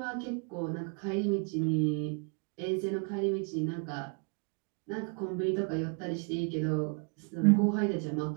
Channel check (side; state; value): left; quieter; 38.9 dB